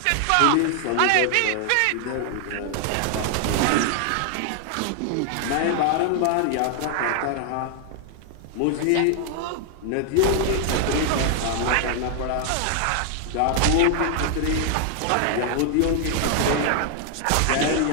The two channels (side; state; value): both; different; correlation 0.00